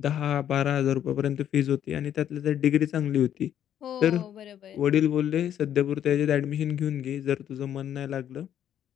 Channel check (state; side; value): quieter; right; 10.2 dB